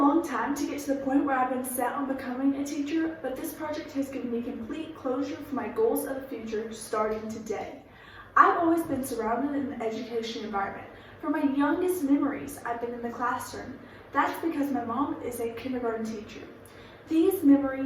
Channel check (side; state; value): both; identical; correlation 1.00